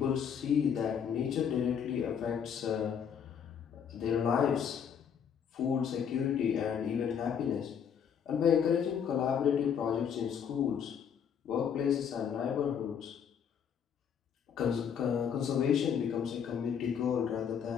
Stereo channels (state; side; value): quieter; right; 7.8 dB